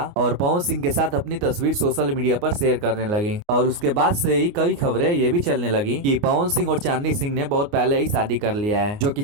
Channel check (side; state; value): left; late; 29 ms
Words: और पवन सिंह के साथ अपनी तस्वीर सोशल मीडिया पर शेयर करने लगी। और उसके बाद से ही कई खबरें ये भी चलने लगी कि पवन सिंह और चांदनी सिंह ने बहुत पहले ही शादी कर लिया है, जो कि